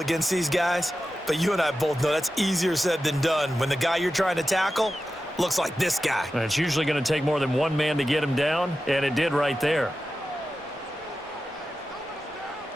these guys, but you and I both know that's easier said than done when the guy you're trying to tackle looks like this guy. And it's usually going to take more than one man to get him down, and it did right there.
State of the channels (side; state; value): both; normal; correlation 0.92